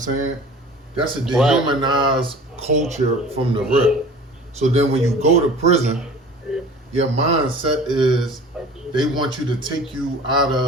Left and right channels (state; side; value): normal; both; correlation 0.43